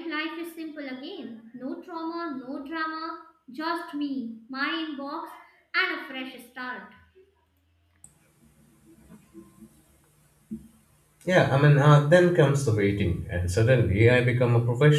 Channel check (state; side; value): identical; both; correlation 1.00